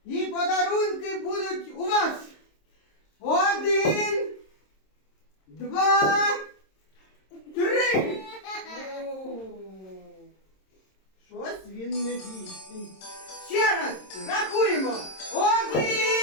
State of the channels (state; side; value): late; right; 26 ms